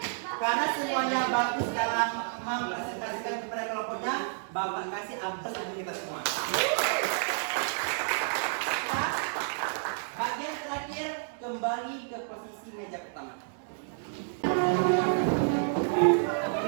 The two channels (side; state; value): left; silent; digital silence